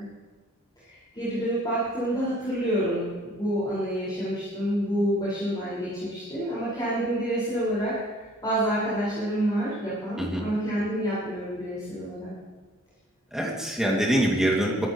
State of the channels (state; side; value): normal; both; correlation 0.57